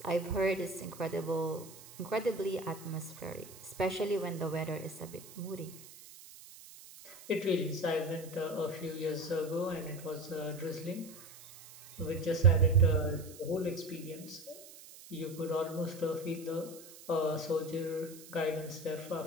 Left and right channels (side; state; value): right; noise; hiss, 18 dB below the sound